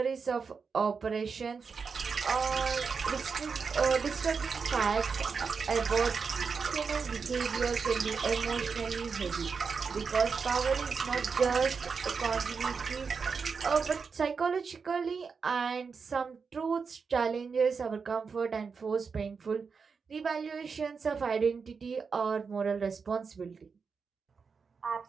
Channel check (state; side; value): quieter; left; 5.4 dB